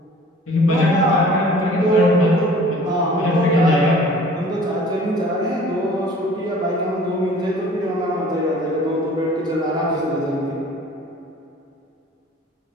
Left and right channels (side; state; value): both; normal; correlation 0.49